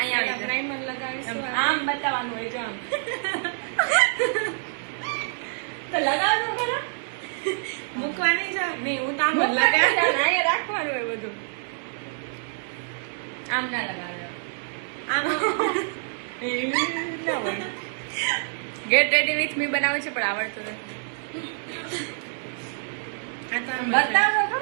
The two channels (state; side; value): silent; left; digital silence